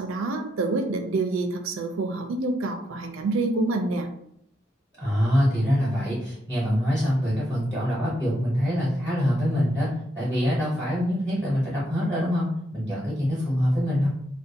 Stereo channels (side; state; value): both; normal; correlation 0.79